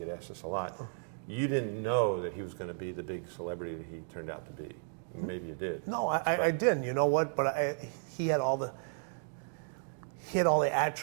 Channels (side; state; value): left; silent; digital silence